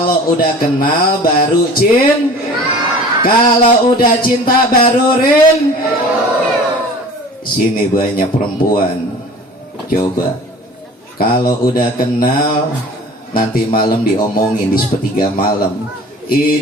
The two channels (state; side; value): normal; both; correlation 0.43